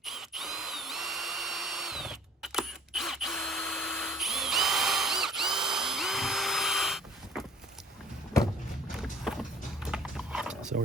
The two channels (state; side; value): normal; both; correlation 0.52